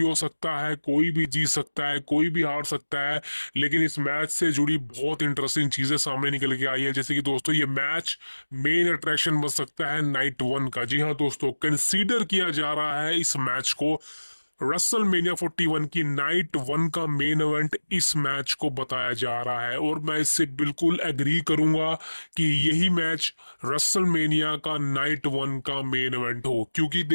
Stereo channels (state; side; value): inverted; both; correlation -1.00